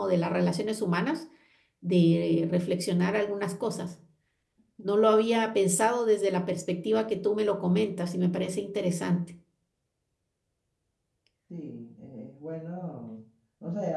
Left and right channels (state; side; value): identical; both; correlation 1.00